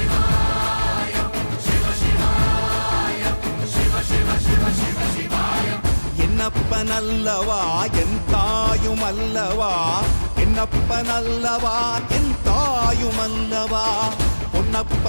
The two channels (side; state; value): both; inverted; correlation -1.00